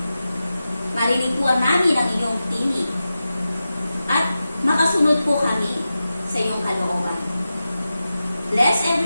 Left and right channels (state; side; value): inverted; both; correlation -0.93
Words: marinig po namin ang iyong tinig at makasunod po kami sa iyong kalooban. Bless